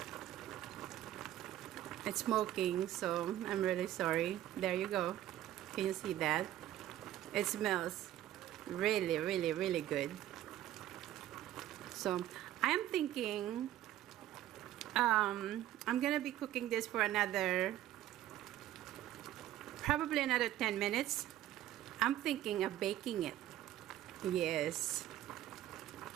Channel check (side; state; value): left; quieter; 13.2 dB